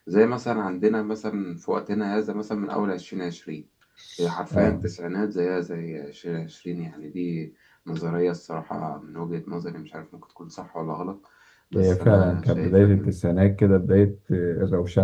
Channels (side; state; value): both; identical; correlation 1.00